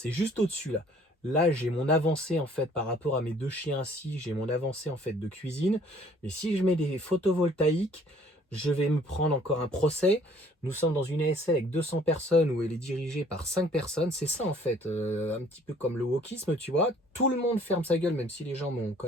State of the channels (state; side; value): normal; both; correlation 0.57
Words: juste au-dessus là. Là, j'ai mon avancée en fait par rapport à mes 2 chiens ici, j'ai mon avancée en fait de cuisine. Mais si je mets des photovoltaïques, je vais me prendre encore un procès. Nous sommes dans une ASL avec 200 personnes où elle est dirigée par 5 personnes. C'est ça en fait, un petit peu comme le wokisme, tu vois. Tout le monde ferme sa gueule, même si les gens m'ont quand